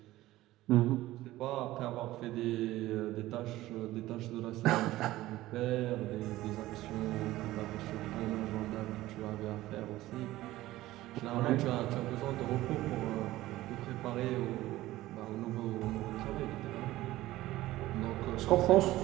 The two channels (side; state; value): left; quieter; 16.5 dB